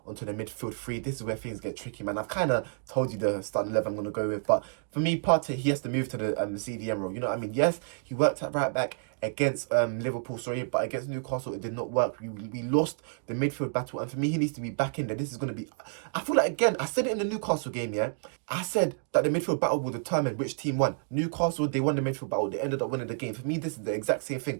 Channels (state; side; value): silent; left; digital silence